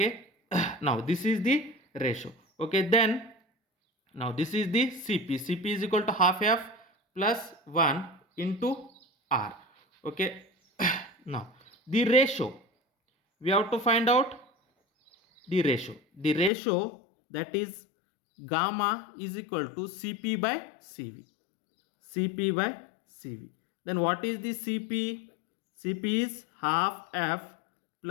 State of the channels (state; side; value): drops out; right; at 16.5 s